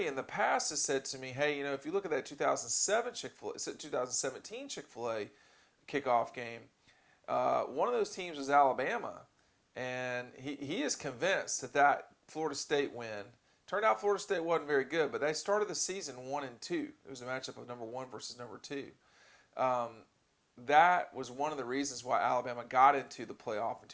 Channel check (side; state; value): both; identical; correlation 1.00